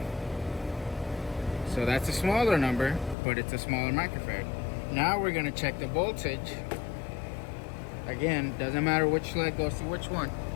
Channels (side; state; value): right; drops out; at 3.2 s